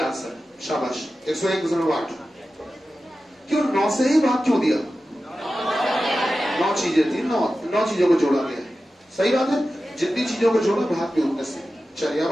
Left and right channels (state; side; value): normal; both; correlation 0.93